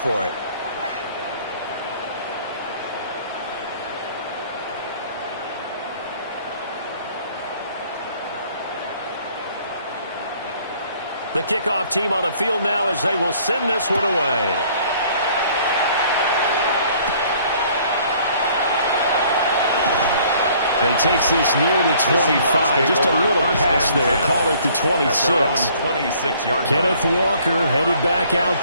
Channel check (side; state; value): both; inverted; correlation -0.58